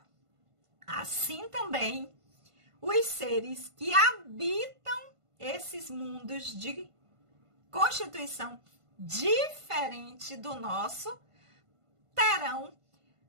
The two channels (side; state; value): left; late; 1.5 ms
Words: assim também os seres que habitam esses mundos de constituição diferente do nosso terão